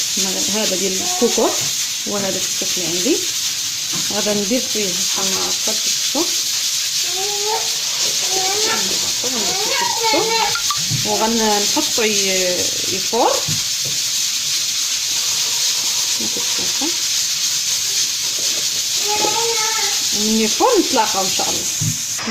هذا ديال الكوكوط، وهذا الكسكس اللي عندي. غادا ندير فيه بحال هكا الكسكسو وغنحطو يفور كما كتشوفوا. من يفور نتلاقاو ان شاء الله.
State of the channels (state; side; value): identical; both; correlation 1.00